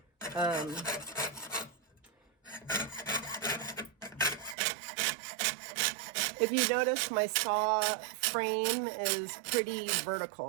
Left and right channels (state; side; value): drops out; left; at 4.5 s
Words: If you notice, my saw frame is pretty